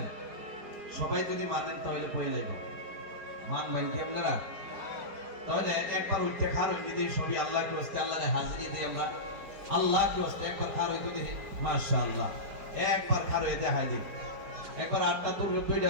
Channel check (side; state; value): left; late; 4.9 ms